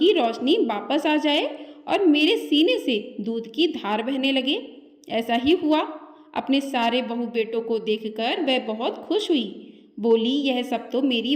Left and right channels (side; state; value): both; identical; correlation 1.00